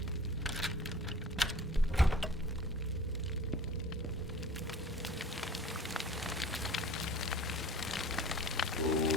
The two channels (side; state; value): both; normal; correlation 0.44